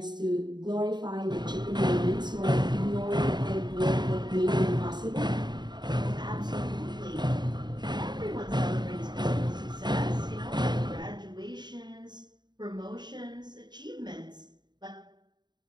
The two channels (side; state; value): left; late; 0.21 ms